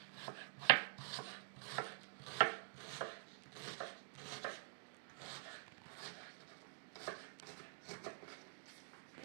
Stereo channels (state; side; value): silent; left; digital silence